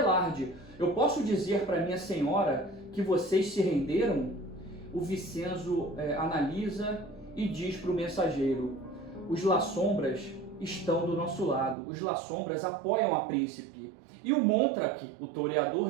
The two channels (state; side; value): drops out; left; at 11.8 s